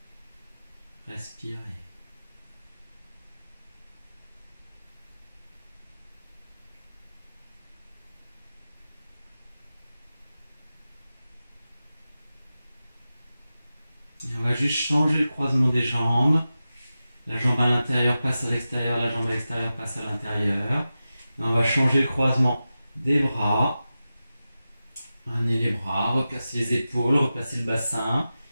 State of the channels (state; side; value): inverted; both; correlation -0.93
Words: Respirez. Et on va juste changer le croisement des jambes. La jambe à l'intérieur passe à l'extérieur, la jambe à l'extérieur passe à l'intérieur. Et on va changer le croisement des bras. Amenez les bras, replacez les épaules, replacez le bassin.